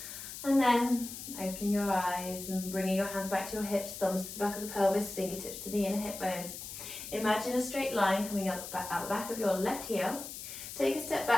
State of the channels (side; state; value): left; noise; hiss, 10 dB below the sound